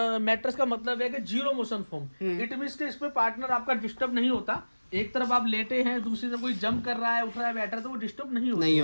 मैट्रेस का मतलब है कि zero motion foam. It means के इस पे पार्टनर आपका डिस्टर्ब नहीं होता। एक तरफ आप लेटे हैं, दूसरी तरफ कोई जंप कर रहा है, उठ रहा है, बैठ रहा है, तो वो डिस्टर्ब नहीं होता। नहीं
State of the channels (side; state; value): both; inverted; correlation -1.00